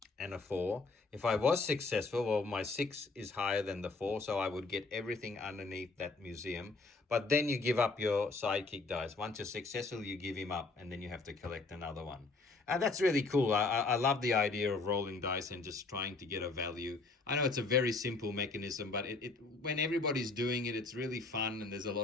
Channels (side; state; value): right; quieter; 3.7 dB